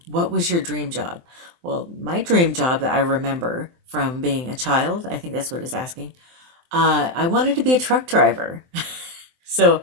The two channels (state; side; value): late; left; 23 ms